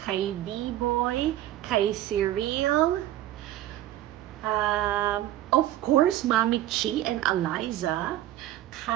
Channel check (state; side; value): quieter; left; 13.8 dB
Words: B-Boy, kay Cyril, of course, Mami Chi and Eliza,